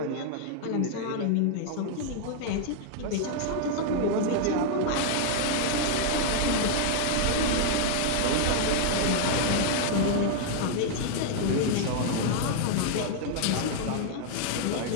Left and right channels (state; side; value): different; both; correlation 0.00